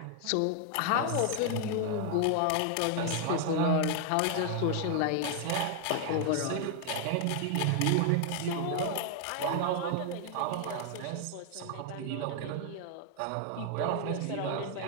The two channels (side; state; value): both; different; correlation 0.00